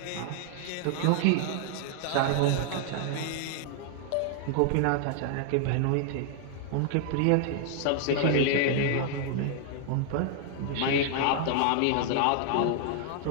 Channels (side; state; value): both; different; correlation 0.00